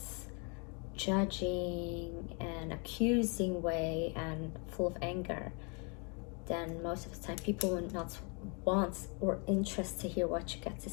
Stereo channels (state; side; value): quieter; right; 35.0 dB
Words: judging and accusing way and full of anger, then most of the time people will not want or interested to hear what you got to